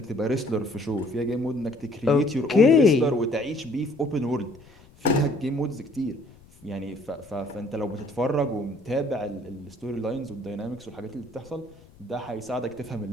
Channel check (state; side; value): noise; left; rumble, 25 dB below the sound